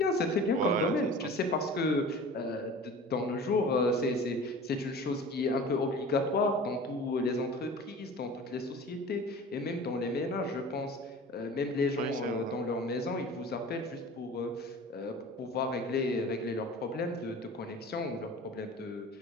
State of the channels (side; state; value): both; normal; correlation 0.40